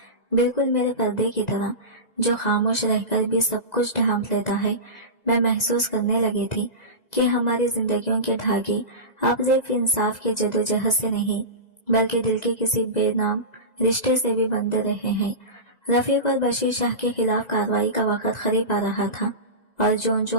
بالکل میرے پردے کی طرح جو خاموش رہ کر بھی سب کچھ ڈھانپ لیتا ہے۔ میں محسوس کرنے لگی تھی کہ ہماری زندگیوں کے دھاگے اب صرف انصاف کے جدوجہد سے نہیں بلکہ دل کے کسی بے نام رشتے سے بھی بندھے رہے ہیں۔ رفیق اور بشیر شاہ کے خلاف کارروائی کا وقت قریب آ رہا تھا، اور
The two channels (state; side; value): late; right; 2.0 ms